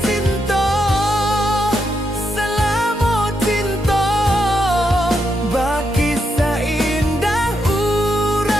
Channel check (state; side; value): normal; both; correlation 0.81